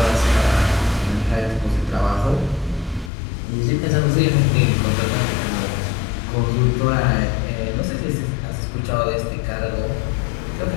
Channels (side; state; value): right; drops out; at 3.1 s